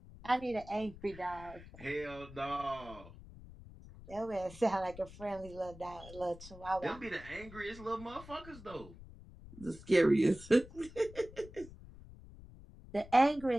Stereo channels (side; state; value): left; noise; rumble, 17 dB below the sound